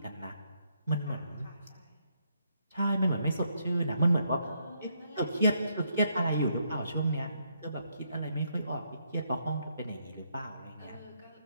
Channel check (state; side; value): inverted; both; correlation -0.75